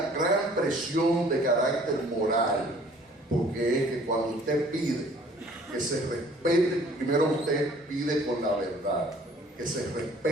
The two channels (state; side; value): normal; both; correlation 0.55